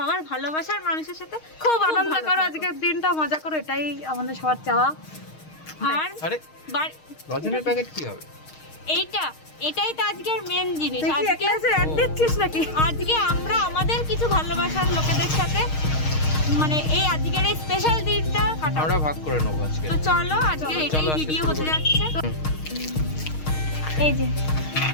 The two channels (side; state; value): right; late; 6.4 ms